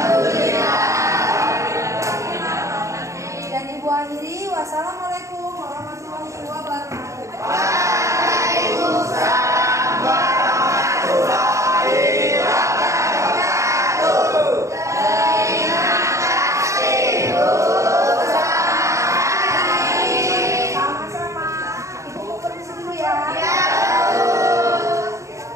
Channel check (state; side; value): late; left; 0.15 ms